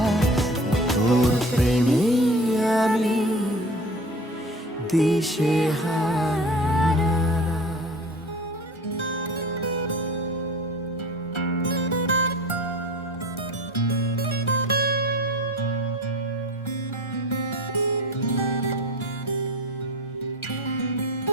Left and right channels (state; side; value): normal; both; correlation 0.39